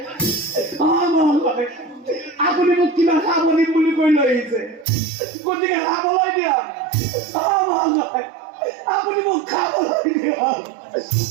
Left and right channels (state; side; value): drops out; left; at 4.9 s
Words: আপুনি মোক কিবা খাব দিম বুলি কৈ লৈ আহিছে গতিকে খাবলৈ দিয়ক আপুনি মোক খাবলৈ দিয়ক